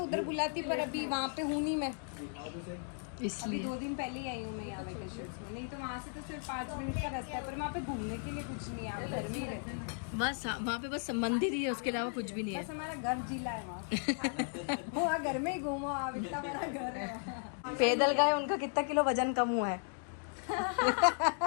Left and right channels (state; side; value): silent; right; 54 dB below the other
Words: बुलाती, पर अभी वहाँ पे हूँ नहीं मैं। अभी इसलिए 2 दिन पहले ही आई हूँ मैं यहाँ वेकेशन में। नहीं तो वहाँ से तो सिर्फ 5 मिनट का रास्ता है, पर वहाँ पे घूमने के लिए कुछ नहीं है। आप घर में ही रहते हैं। बस वहाँ पे बस मंदिर ही है, उसके अलावा कुछ भी नहीं है। बस हमारा घर जिला है वहाँ। वहाँ घर में ही घूमो आप, इतना बड़ा घर है वहाँ। पैदल गए, उनका कितना किलो वजन कम हुआ है।